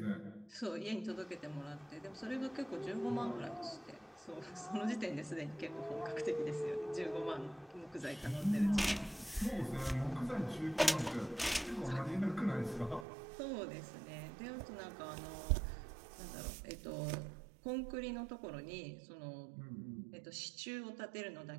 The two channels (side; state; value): left; drops out; at 13.1 s